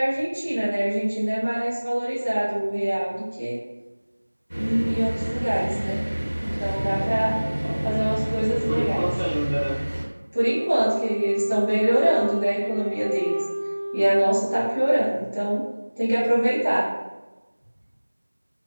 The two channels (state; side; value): inverted; both; correlation -1.00